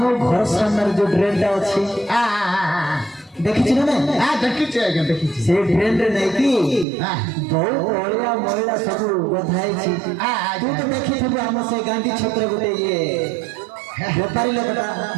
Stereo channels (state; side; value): drops out; left; at 6.9 s